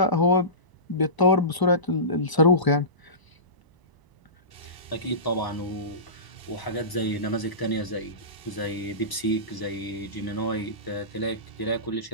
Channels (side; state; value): right; late; 1.0 ms